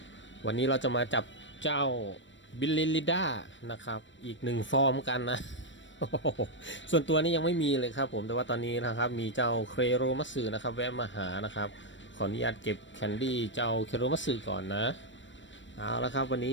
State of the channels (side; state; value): right; late; 0.54 ms